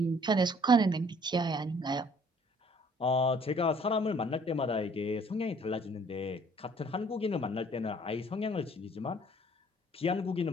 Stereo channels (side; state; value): both; normal; correlation 0.58